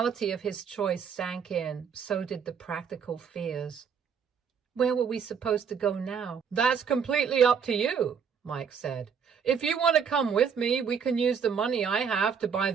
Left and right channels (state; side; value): quieter; left; 6.9 dB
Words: of his choice sank in, so did the practical fears. Where were we supposed to go now? "That's completely up to you," Mike said. "If you want to come with me, we can use the money I have to buy